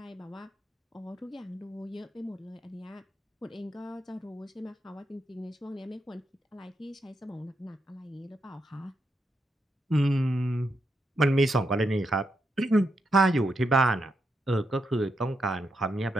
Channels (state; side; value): normal; both; correlation 0.82